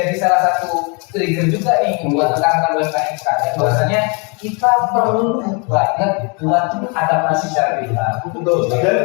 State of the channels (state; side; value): quieter; right; 33.4 dB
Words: salah satu trigger juga nih buat rekan-rekan UMKM sekarang. Bahwasanya kita perlu banget buat adaptasi secara digital. Betul.